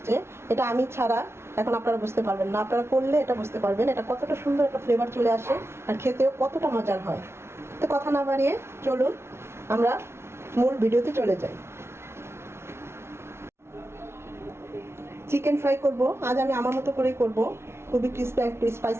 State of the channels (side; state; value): left; late; 0.12 ms